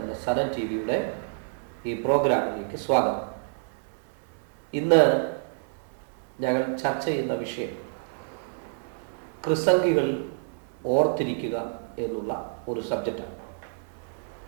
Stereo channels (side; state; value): left; silent; digital silence